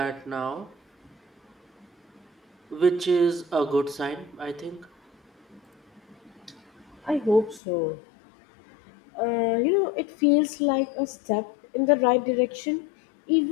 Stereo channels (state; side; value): drops out; right; at 7.6 s